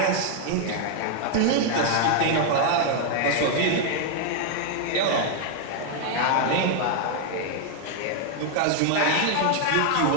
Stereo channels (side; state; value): both; different; correlation 0.00